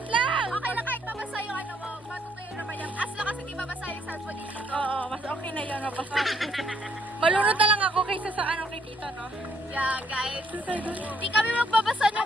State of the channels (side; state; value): both; normal; correlation 0.69